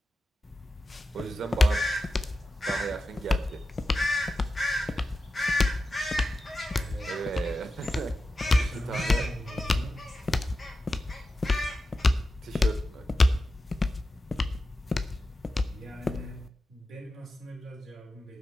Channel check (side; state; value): both; normal; correlation 0.92